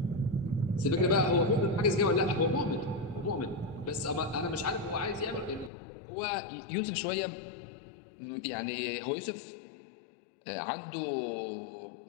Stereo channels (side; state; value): right; drops out; at 5.7 s